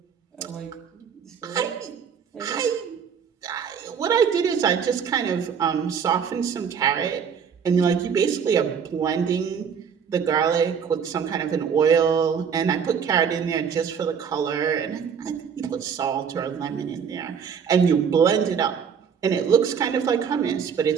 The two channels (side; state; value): left; quieter; 7.0 dB